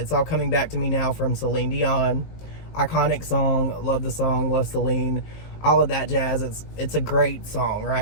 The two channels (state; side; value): late; right; 19 ms